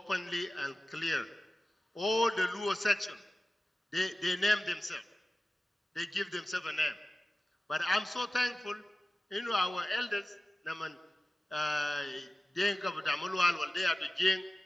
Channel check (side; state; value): both; normal; correlation 0.96